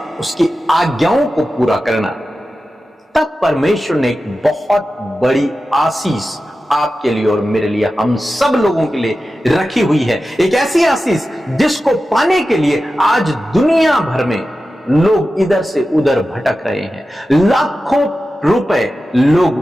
उसकी आज्ञाओं को पूरा करना। तब परमेश्वर ने एक बहुत बड़ी आशीष आपके लिए और मेरे लिए, हम सब लोगों के लिए रखी हुई है। एक ऐसी आशीष जिसको पाने के लिए आज दुनिया भर में लोग इधर से उधर भटक रहे हैं। लाखों रुपए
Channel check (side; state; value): both; normal; correlation 0.93